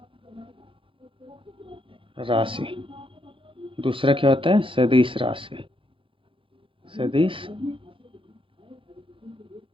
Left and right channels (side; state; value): left; late; 0.25 ms